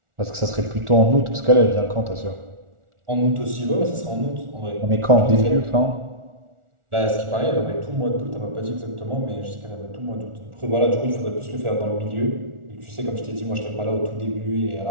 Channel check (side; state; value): left; late; 1.4 ms